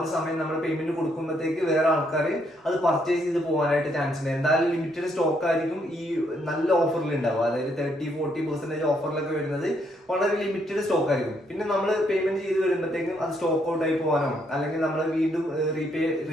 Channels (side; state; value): both; normal; correlation 0.73